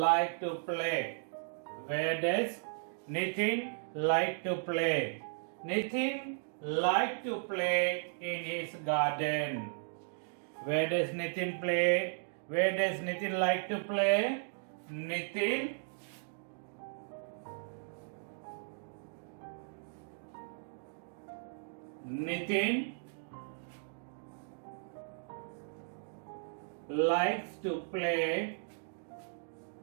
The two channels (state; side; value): silent; left; digital silence